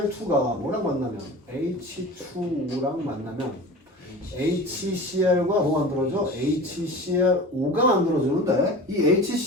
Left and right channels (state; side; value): normal; both; correlation 0.35